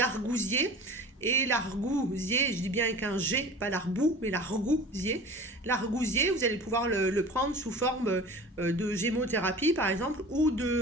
Et l'argousier, je dis bien avec un G, pas l'arbou, mais l'argousier. L'argousier, vous allez pouvoir le prendre sous forme de gémothérapie, par exemple, ou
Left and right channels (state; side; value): normal; both; correlation 0.39